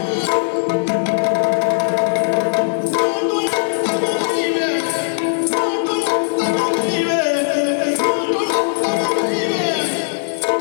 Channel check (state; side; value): silent; right; digital silence